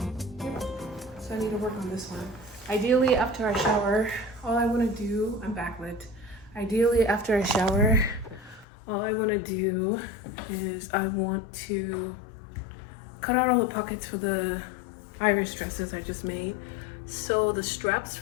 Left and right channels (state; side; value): drops out; right; at 8.7 s